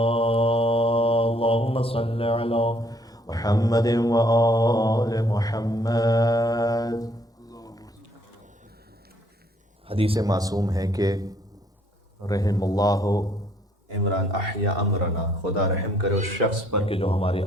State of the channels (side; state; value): both; normal; correlation 0.65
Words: اللهم صل على محمد وآل محمد. حدیث معصوم ہے کہ رحم اللہ عمران احیا امرنا، خدا رحم کرے اس شخص پر کہ جو ہمارے